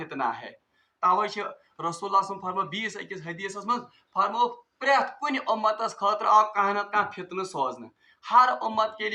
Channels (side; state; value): both; identical; correlation 1.00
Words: ہے. توے رسول اللہ صلی اللہ علیہ وسلم فرمو بیس اکس حدیث من فرمو پریت کن امتس خاطر آو کانہ نتہ کانہ فتنہ سوزن, ہر امت کے